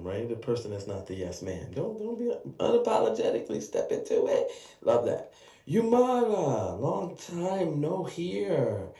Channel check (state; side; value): identical; both; correlation 1.00